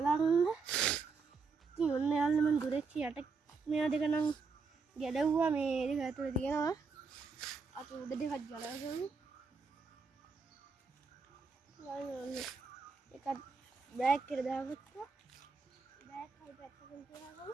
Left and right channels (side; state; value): left; quieter; 4.7 dB